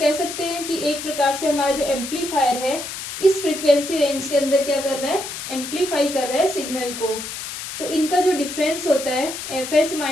सकते हैं कि एक प्रकार से हमारा जो एम्पलीफायर है इस फ्रीक्वेंसी रेंज के अंदर क्या कर रहा है, एम्पलीफाई कर रहा है सिग्नल को। तो इनका जो डिफरेंस होता है F H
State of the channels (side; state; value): left; noise; hiss, 8 dB below the sound